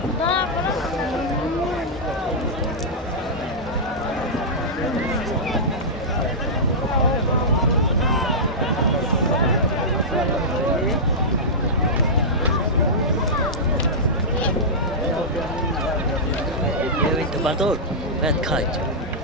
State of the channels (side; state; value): both; normal; correlation -0.12